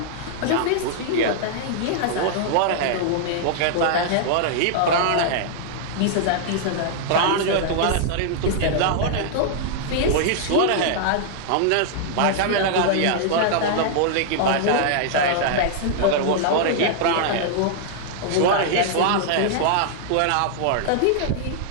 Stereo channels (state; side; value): different; both; correlation -0.01